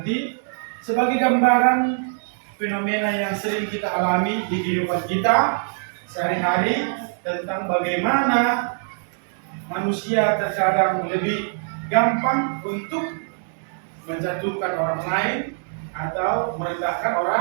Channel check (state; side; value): silent; left; digital silence